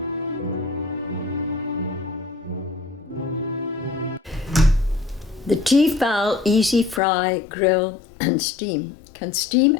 T-Fal Easy Fry Grill and Steam can steam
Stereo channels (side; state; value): right; drops out; at 7.0 s